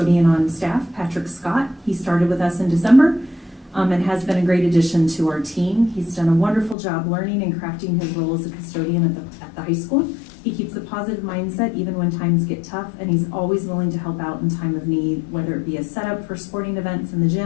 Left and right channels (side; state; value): right; drops out; at 6.8 s